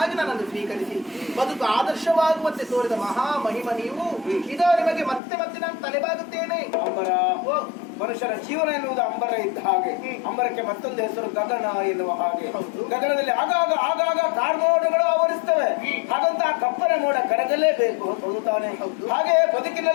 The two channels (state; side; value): drops out; right; at 5.2 s